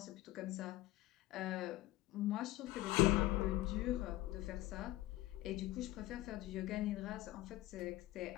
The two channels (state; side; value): quieter; right; 16.9 dB